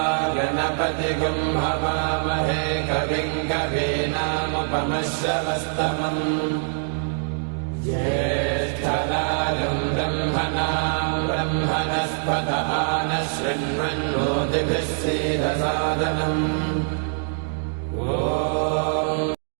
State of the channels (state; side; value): silent; left; digital silence